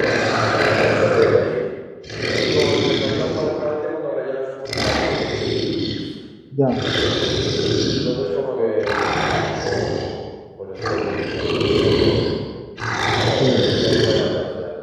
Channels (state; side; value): identical; both; correlation 1.00